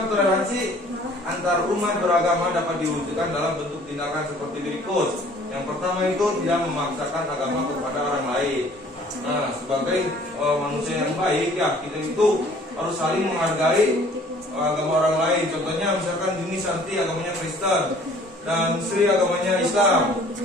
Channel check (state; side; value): normal; both; correlation 0.54